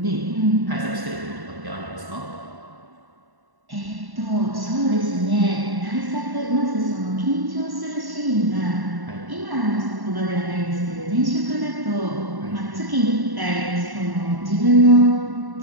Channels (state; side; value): late; left; 1.1 ms